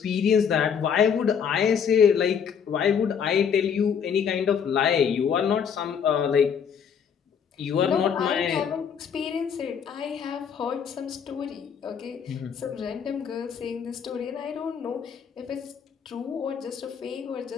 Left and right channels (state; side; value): quieter; right; 7.3 dB